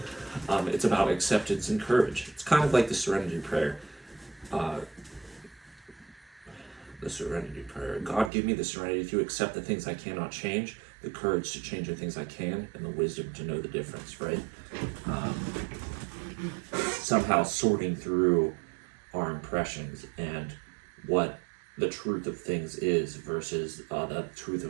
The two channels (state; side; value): drops out; left; at 8.3 s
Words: it's about acceptance and courage. It's kind of like the serenity prayer. The serenity prayer. God, give me the serenity to accept the things I cannot change, the courage to change the things I can, and the wisdom to know the difference, right? Somehow sorting through our impressions and what the truth of things is versus the truth